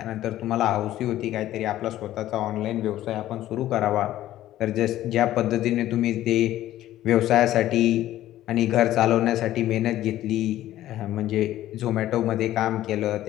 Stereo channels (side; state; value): right; quieter; 13.8 dB